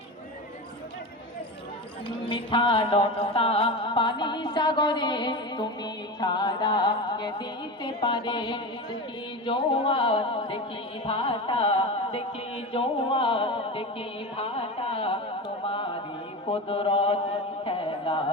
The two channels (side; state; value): both; normal; correlation 0.25